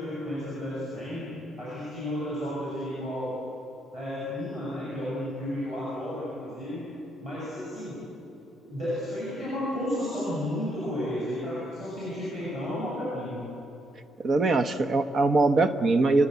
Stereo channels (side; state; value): both; normal; correlation 0.77